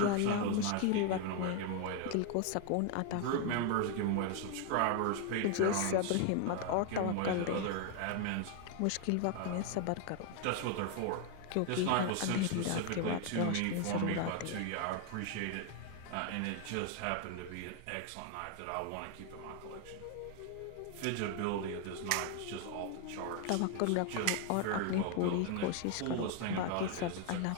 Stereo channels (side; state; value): both; different; correlation 0.00